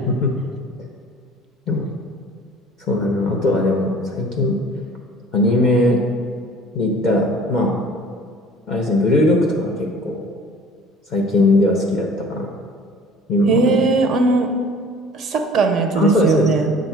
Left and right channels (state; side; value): normal; both; correlation 0.48